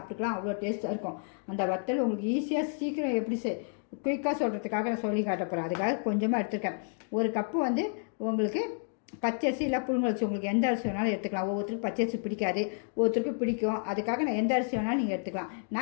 அவ்வளோ டேஸ்ட்டாக இருக்கும் அந்த வத்தல். உங்களுக்கு ஈஸியாக சீக்கிரம் எப்படி குயிக்காக சொல்கிறதுக்காக நான் சொல்லி காட்ட போகிறேன். அதுக்காக கொஞ்சமாக எடுத்துருக்கேன். ஒரு கப்பு வந்து உங்களுக்கு பச்சரிசி இல்லை புழுங்கல் உங்களுக்கு எந்த அரிசி வேணாலும் எடுத்துக்கலாம். ஒவ்வொருத்தருக்கும் பச்சரிசி பிடிக்காது, ஒவ்வொருத்தருக்கும் பிடிக்கும். அதுக்காக நான் எந்த அரிசி வேணாலும் நீங்கள் எடுத்துக்கலாம்.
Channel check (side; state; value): right; silent; 57 dB below the other